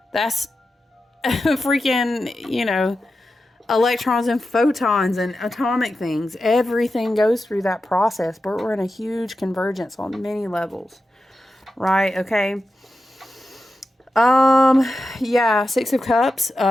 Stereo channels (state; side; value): normal; both; correlation 0.90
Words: That's freaking, electrons and photons and atomic things. Everything goes through that process, but we're in a huge convergence on many levels. Right? Okay. Yeah, Six of Cups,